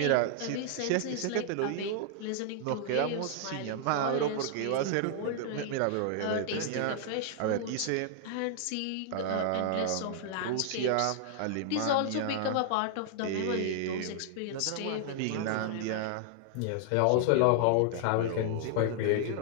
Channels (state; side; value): different; both; correlation 0.00